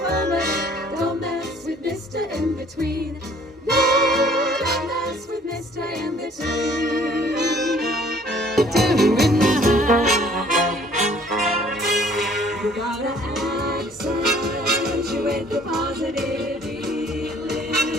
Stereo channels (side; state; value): both; normal; correlation 0.57